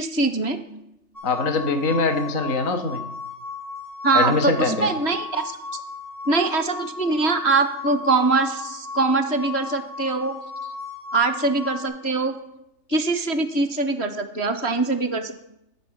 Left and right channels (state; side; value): late; right; 3.1 ms